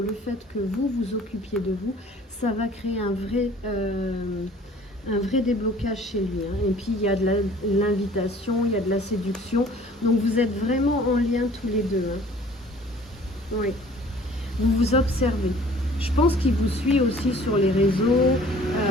fait que vous vous occupiez de vous, ça va créer un vrai déblocage chez lui, hein. Et puis il y a de l'invitation, il y a de la séduction, donc vous êtes vraiment en lien tous les deux, hein. Oui, vous vous observez. Je pense qu'il vous suit aussi sur les réseaux,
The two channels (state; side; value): normal; both; correlation 0.51